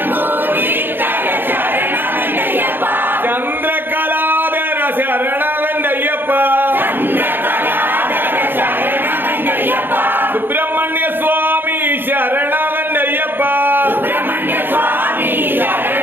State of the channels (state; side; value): late; left; 0.098 ms